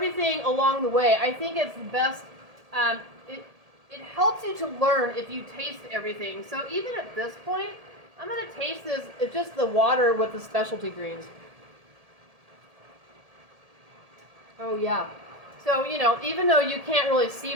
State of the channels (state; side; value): late; left; 1.8 ms